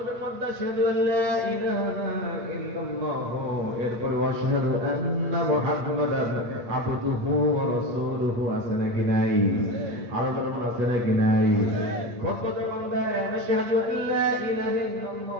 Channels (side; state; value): left; late; 8.7 ms